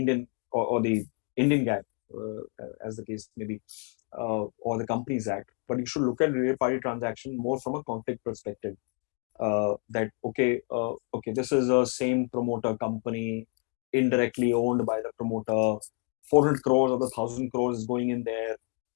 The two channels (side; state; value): right; quieter; 33.8 dB